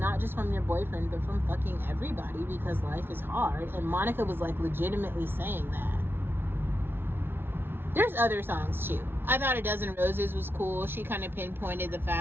just from your boyfriend, but from fucking everybody, because life is hard. And Monica was like legitimately saying that. There's other songs too. I thought A Dozen Roses was cool. She kind of pinpointed the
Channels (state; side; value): late; left; 0.11 ms